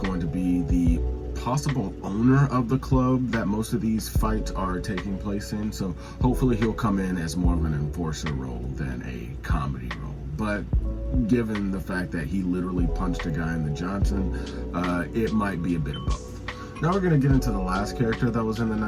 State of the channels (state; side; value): identical; both; correlation 1.00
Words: to be the possible owner of the club that most of these fights are taking place in, so hopefully he'll come in as more of an enforcer role than a comedy role. But given the fact that he literally punched a guy in the Johnson, it might be a bit of both. Now we're going to get into the last character that was in the